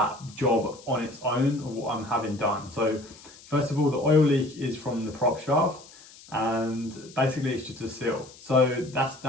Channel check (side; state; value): left; noise; hiss, 21 dB below the sound